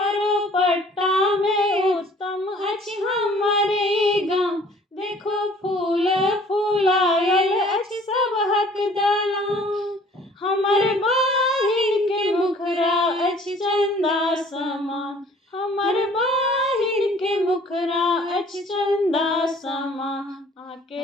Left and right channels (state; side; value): normal; both; correlation 0.54